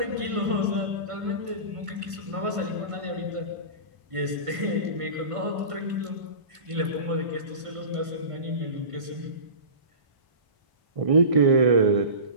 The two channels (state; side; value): late; left; 1.5 ms